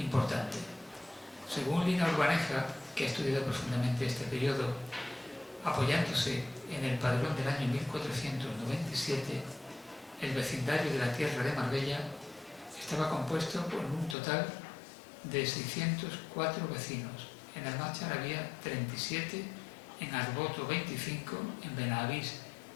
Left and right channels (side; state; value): right; drops out; at 14.2 s